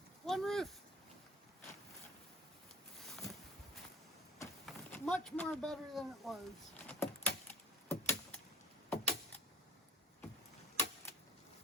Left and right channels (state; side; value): normal; both; correlation 0.42